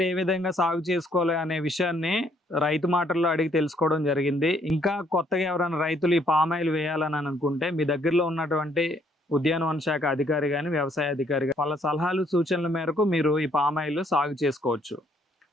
ఏ విధంగా సాగు చేసుకోవాలి అనే విషయాన్ని రైతు మాటల్లో అడిగి తెలుసుకోవడం జరిగింది. ఇంకా కొత్తగా ఎవరైనా రైతులు ఈ పామాయిల్ వేయాలని అనుకుంటే మీ దగ్గరలో ఉన్నటువంటి ఉద్యానవన శాఖ అధికారి కానీ వ్యవసాయ అధికారి కానీ వాళ్ళ సలహాలు సూచనల మేరకు మీరు ఈ పామాయిల్ సాగు చేసుకోవచ్చు.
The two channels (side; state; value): both; normal; correlation 0.67